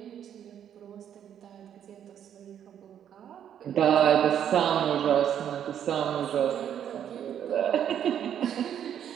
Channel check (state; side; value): quieter; left; 9.5 dB